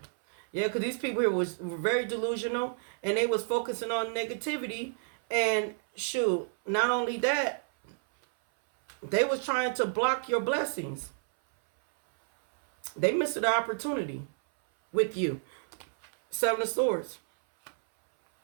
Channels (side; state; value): left; silent; 58 dB below the other